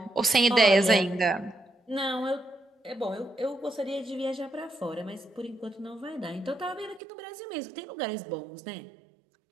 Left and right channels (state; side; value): drops out; left; at 7.0 s